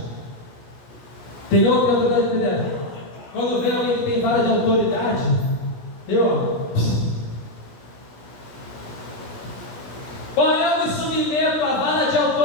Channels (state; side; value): late; right; 16 ms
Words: tem outro que tem autoridade eclesiástica. Quando vem alguém que tem vara de autoridade, olha, eu me submeto à vara de autoridade